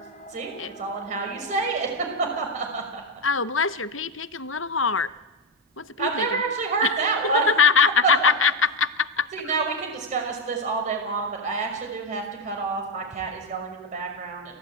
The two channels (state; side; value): normal; both; correlation 0.09